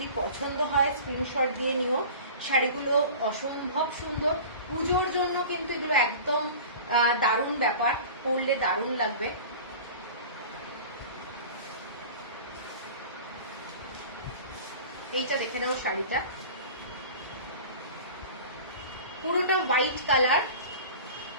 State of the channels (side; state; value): both; inverted; correlation -0.39